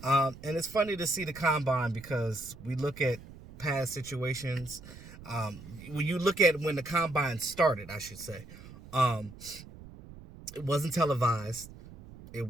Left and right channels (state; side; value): noise; right; rumble, 17 dB below the sound